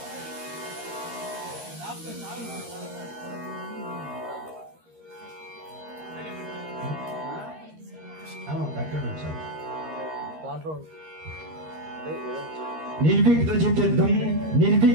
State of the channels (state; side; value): late; left; 13 ms